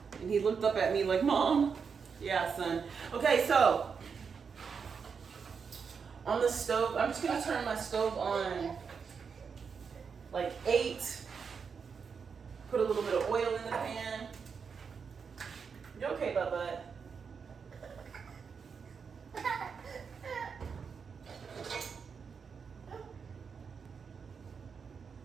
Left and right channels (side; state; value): left; quieter; 6.0 dB